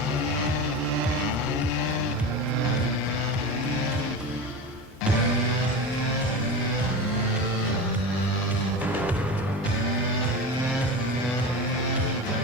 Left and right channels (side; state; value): both; normal; correlation 0.26